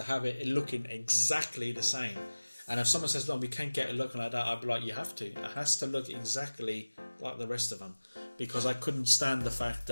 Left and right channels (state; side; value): inverted; both; correlation -1.00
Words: have it looking exactly the same. And if someone says, "No, we can't get it looking like that," I'd be like, "You have to. It has to look exactly like the rest of them," because I couldn't stand the fact